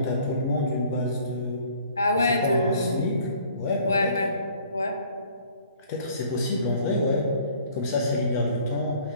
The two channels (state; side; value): inverted; both; correlation -0.56